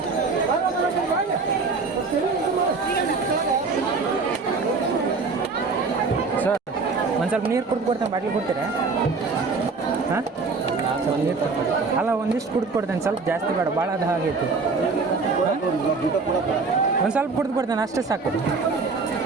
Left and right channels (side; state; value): left; quieter; 4.4 dB